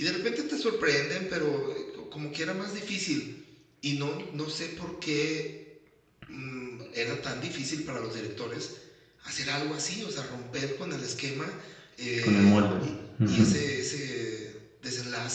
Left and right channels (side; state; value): both; identical; correlation 1.00